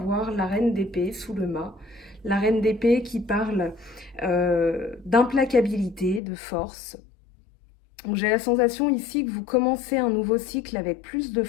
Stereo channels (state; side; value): drops out; right; at 6.2 s